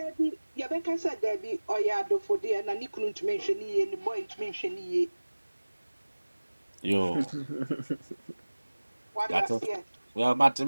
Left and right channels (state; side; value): inverted; both; correlation -1.00